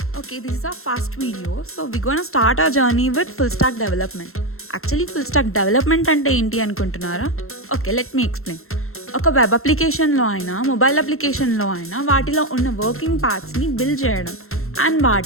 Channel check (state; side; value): late; right; 0.62 ms